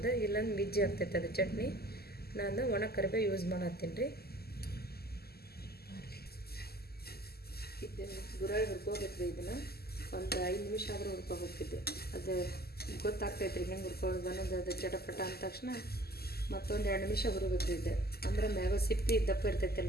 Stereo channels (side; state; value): right; late; 0.46 ms